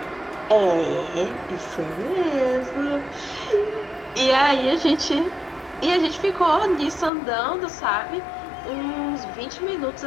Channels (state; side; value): drops out; right; at 7.1 s